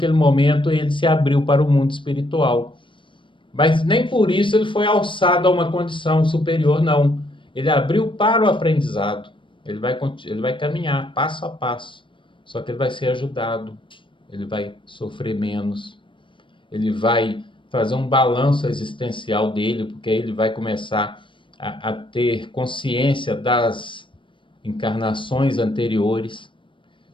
momento, ele se abriu para o mundo espiritual. Mas nem por isso ele foi alçado a uma condição superior, não. Ele abriu para o aprendizado. Ele vai caminhar passo a passo. Só que ele vai ser ajudado. Ele vai sofrer menos. Ele vai fazer um balanço existencial dele, porque aí ele vai começar a ter consciência das encarnações anteriores.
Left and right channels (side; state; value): right; late; 0.24 ms